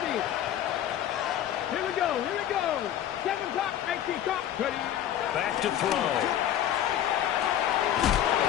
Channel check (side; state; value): right; quieter; 11.1 dB